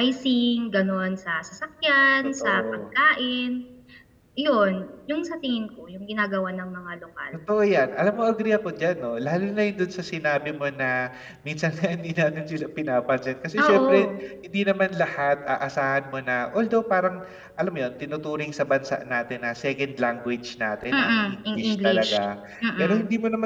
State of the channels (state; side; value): identical; both; correlation 1.00